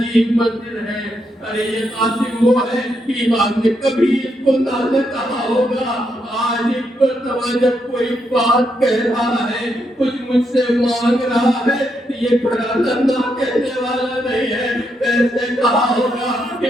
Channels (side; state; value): both; normal; correlation 0.80